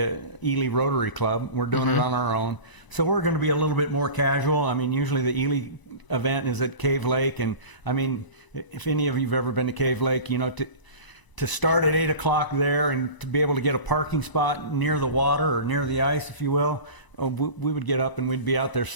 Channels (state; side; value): late; right; 1.0 ms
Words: Ely Rotary Club. We're doing it on our own. So we're going to be a little bit more casual. I mean, usually the Ely event is at Cave Lake. And, I mean, if any of you have ever been to Cave Lake, to start at 8 o'clock there and to be able to get a parking spot near the water or near the ice, if you will, we would get up and we'd be out there